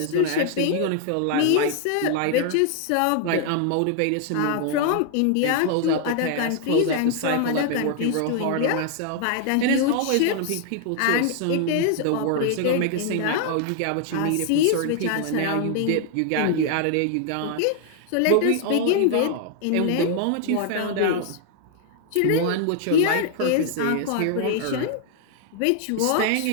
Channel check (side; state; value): both; different; correlation 0.00